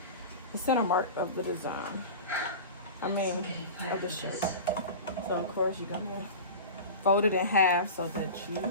center mark of the design. Of the shirt. So of course you're gonna fold it in half so that you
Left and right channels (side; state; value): both; inverted; correlation -0.31